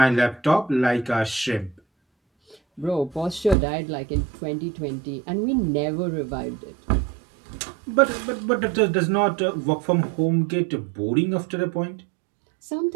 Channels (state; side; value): drops out; left; at 3.6 s